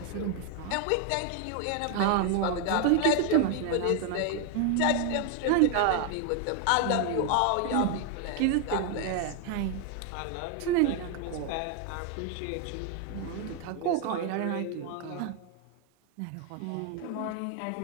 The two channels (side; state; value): both; different; correlation 0.00